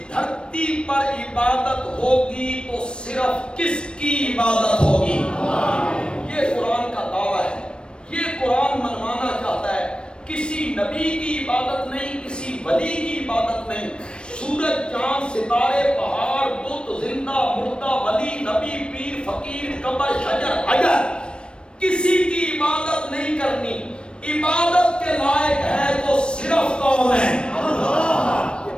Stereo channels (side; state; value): right; late; 0.055 ms